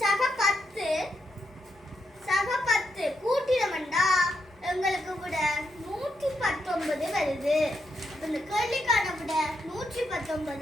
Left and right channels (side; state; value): both; normal; correlation 0.81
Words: சக 10 கூட்டினோம்னா எங்களுக்கு விட 119 வருது. இந்த கேள்விக்கான விட